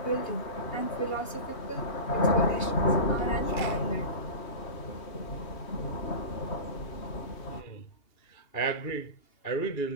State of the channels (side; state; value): right; late; 2.8 ms